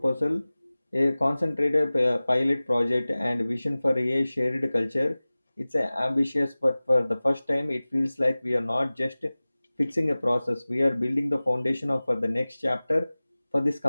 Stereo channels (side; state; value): both; inverted; correlation -0.98